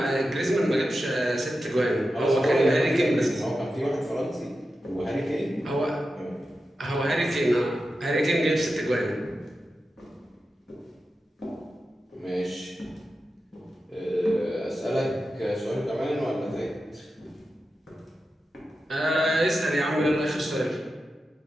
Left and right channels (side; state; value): both; normal; correlation 0.91